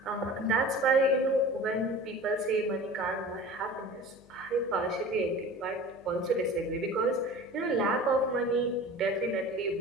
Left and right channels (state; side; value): noise; left; hum, 28 dB below the sound